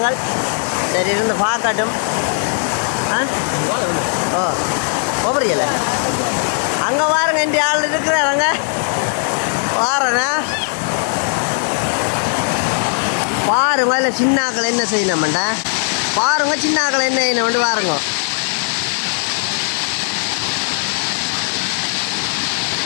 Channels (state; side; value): silent; right; 60 dB below the other